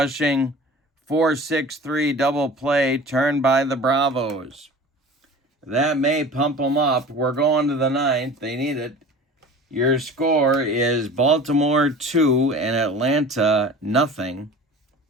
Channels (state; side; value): normal; both; correlation 0.40